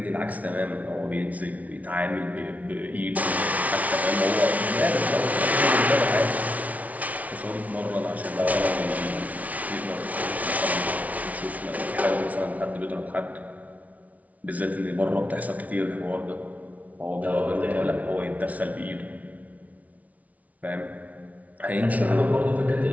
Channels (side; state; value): left; late; 0.070 ms